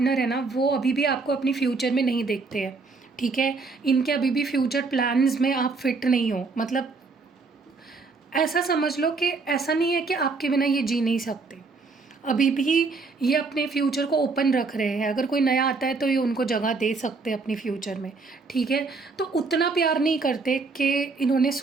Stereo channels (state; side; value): quieter; left; 4.1 dB